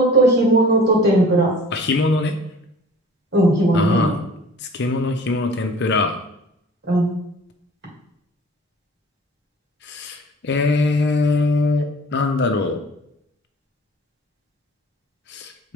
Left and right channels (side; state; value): both; normal; correlation 0.47